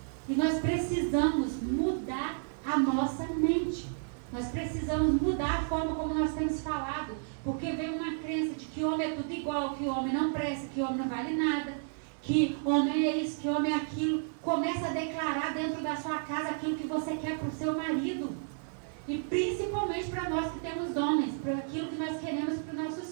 E nós precisamos mudar a nossa mente. Nós precisamos mudar a forma como nós temos falado, porque vem uma crença de que homem é tudo igual, que homem não presta, que homem não vale nada, que homem é isso, que homem é aquilo. Começa a declarar dentro da sua casa aquilo que você quer para o seu marido. E principalmente para nós que temos homens, para aquilo que nós queremos para os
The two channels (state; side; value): silent; left; digital silence